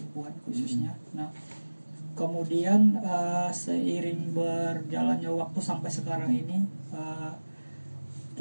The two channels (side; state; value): both; inverted; correlation -1.00